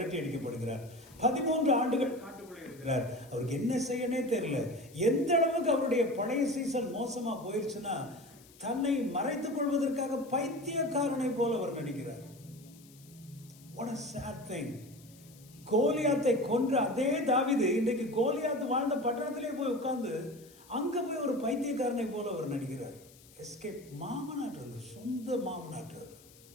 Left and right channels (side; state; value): left; noise; hiss, 24 dB below the sound